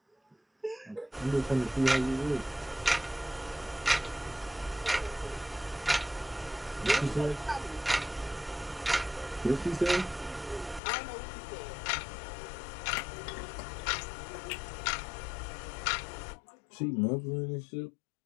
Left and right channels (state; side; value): drops out; right; at 10.8 s